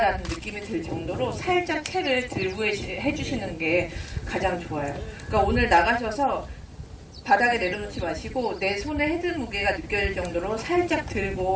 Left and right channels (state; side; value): identical; both; correlation 1.00